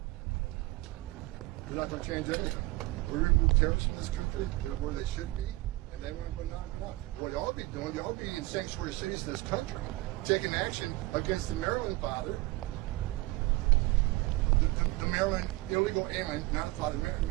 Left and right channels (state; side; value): quieter; left; 20.7 dB